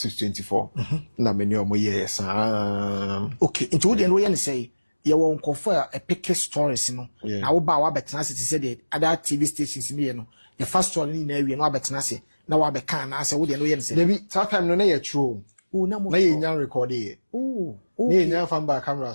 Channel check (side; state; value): both; inverted; correlation -1.00